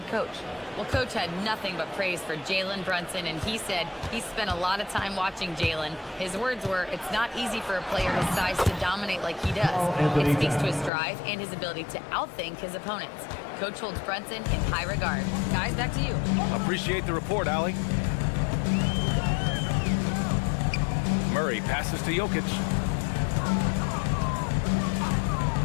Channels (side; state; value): right; drops out; at 10.9 s